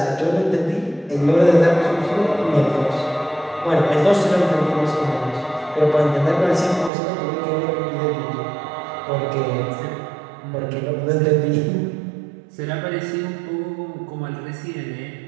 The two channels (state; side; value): drops out; left; at 6.9 s